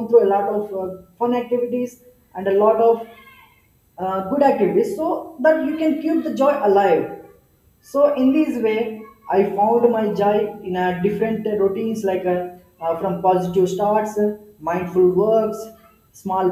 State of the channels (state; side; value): identical; both; correlation 1.00